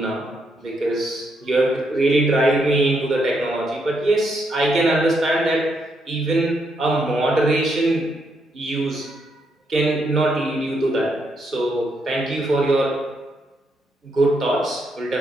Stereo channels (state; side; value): normal; both; correlation 0.78